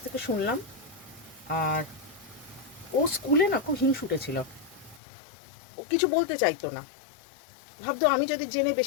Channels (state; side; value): drops out; right; at 5.0 s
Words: থেকে শুনলাম। আর ও স্কুলে না খুব হিংসুটে ছিল, ও কিছু বলতে চাইতো না, ভাবতো আমি যদি জেনে